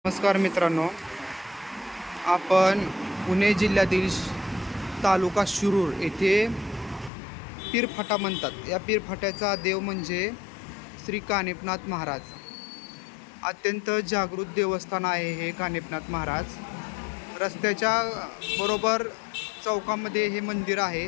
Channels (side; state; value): right; drops out; at 7.1 s